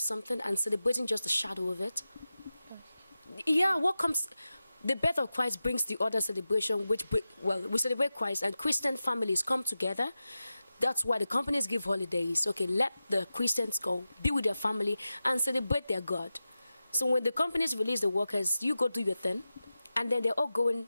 something and celebrating just the shadow of it. Yeah, what comes... The birth of Christ brings the other celebration, we celebrate Christ, and Christian families come together. That's why the companies give holidays. Okay, let the Christians go, be with their family, and celebrate their God. So when the companies release the workers, you go do your thing, and then they're all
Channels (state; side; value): inverted; both; correlation -0.93